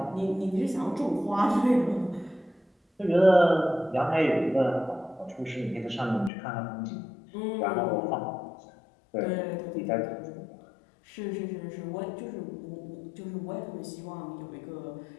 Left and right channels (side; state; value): right; drops out; at 6.3 s